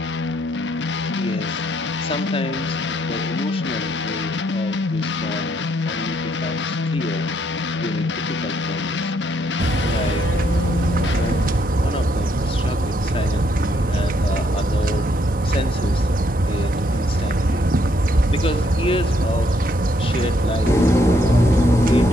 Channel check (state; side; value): normal; both; correlation 0.72